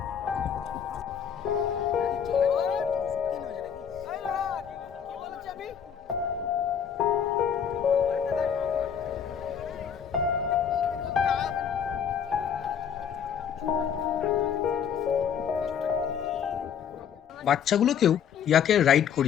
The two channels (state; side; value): quieter; right; 7.9 dB